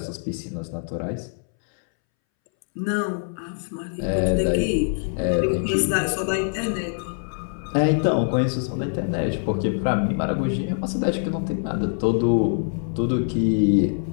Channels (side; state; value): right; silent; 63 dB below the other